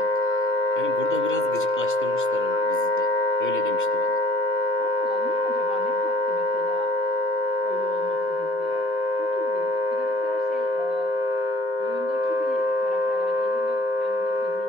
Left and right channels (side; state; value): both; normal; correlation 0.51